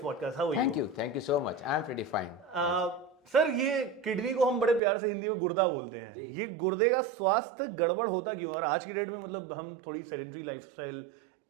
podcast. How are you? Thank you so much. I'm pretty fine. Sir ये kidney को हम बड़े प्यार से हिंदी में गुर्दा बोलते हैं जी। ये गुर्दे का स्वास्थ्य गड़बड़ होता क्यों है? और आज की डेट में मतलब हम थोड़ी सेडेंटरी लाइफस्टाइल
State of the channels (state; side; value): drops out; left; at 4.8 s